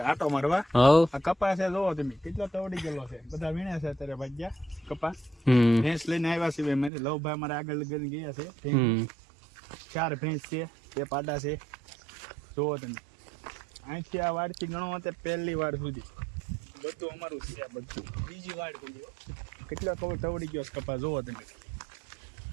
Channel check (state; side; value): drops out; left; at 6.9 s